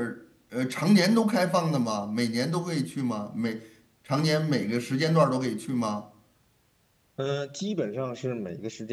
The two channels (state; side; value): identical; both; correlation 1.00